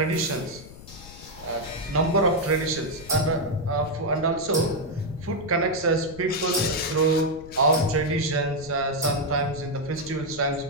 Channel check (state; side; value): noise; left; rumble, 17 dB below the sound